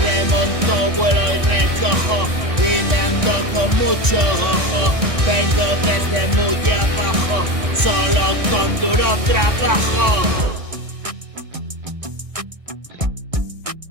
Remonto, vuelo y recojo, y me ando con mucho ojo. Vengo desde muy abajo, solo con duro trabajo.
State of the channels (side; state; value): left; late; 1.6 ms